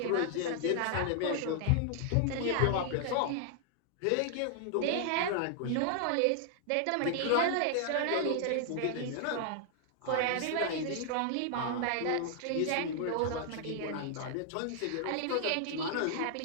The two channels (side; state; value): both; different; correlation 0.00